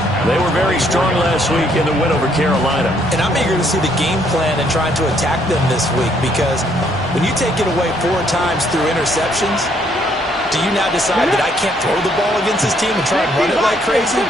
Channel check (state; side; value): normal; both; correlation 0.68